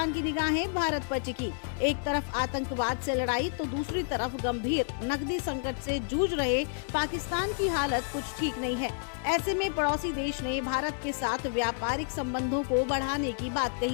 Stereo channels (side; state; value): right; silent; 58 dB below the other